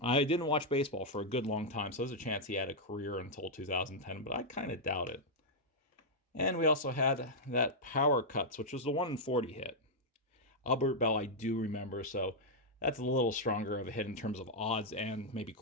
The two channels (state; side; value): normal; both; correlation -0.05